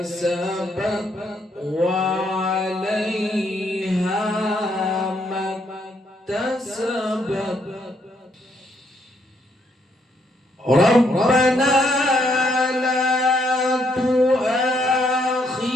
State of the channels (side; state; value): both; normal; correlation 0.73